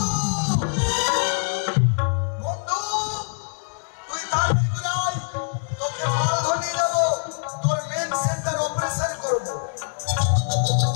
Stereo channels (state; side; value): silent; right; 63 dB below the other